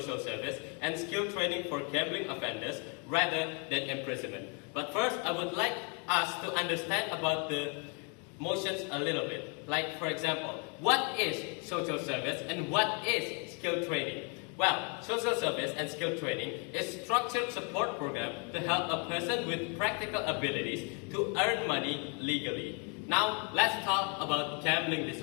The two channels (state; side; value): quieter; right; 36.7 dB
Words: service and skill training for gambling offenders rather than imprisonment. But first, I would like us to understand about the motions a little bit. Like, for example, what is social service and what is skill training? Well, social service and skill training is structured support program to help a person with practical abilities to earn money legally. Now, let's talk about gambling